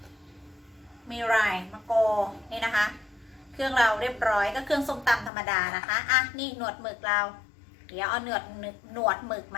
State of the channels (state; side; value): drops out; right; at 5.3 s